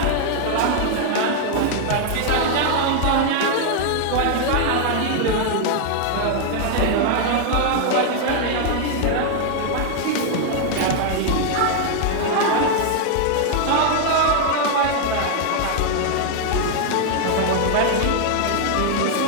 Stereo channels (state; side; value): different; both; correlation 0.00